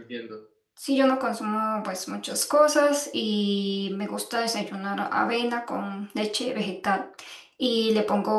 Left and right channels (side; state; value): both; identical; correlation 1.00